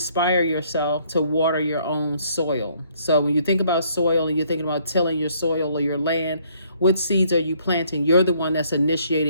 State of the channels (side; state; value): both; inverted; correlation -0.65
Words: yourself to water your own soil. So when you think about soil and you're thinking about tilling your soil or your land, what seeds are you planting? You're the one that's